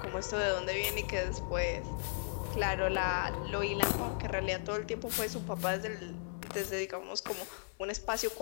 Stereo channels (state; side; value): silent; right; digital silence